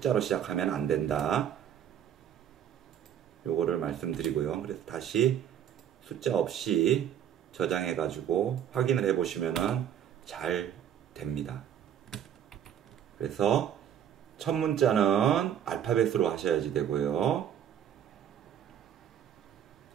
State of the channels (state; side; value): quieter; left; 9.6 dB